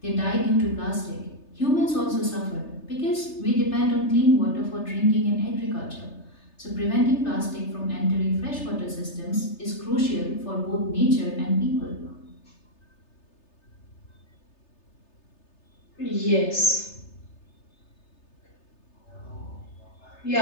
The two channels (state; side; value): late; right; 3.3 ms